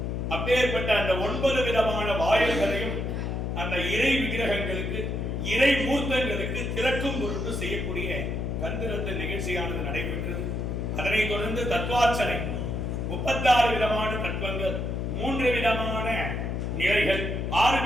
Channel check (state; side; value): noise; left; hum, 2 dB below the sound